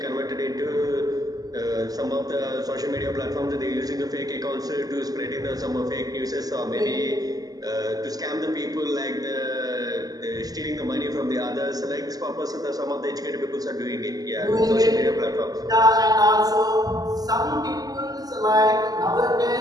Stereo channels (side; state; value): left; late; 0.18 ms